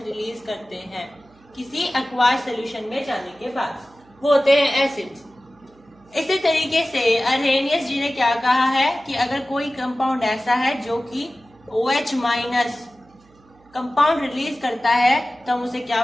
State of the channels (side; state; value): right; noise; hum, 30 dB below the sound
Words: रिलीज करते हैं किसी एक्वास सोल्यूशन में जाने के बाद, वो होते हैं एसिड्स। इसी तरीके से अर्हेनियस जी ने क्या कहा है कि अगर कोई कंपाउंड ऐसा है जो कि OH- कंपाउंड रिलीज करता है तो हम उसे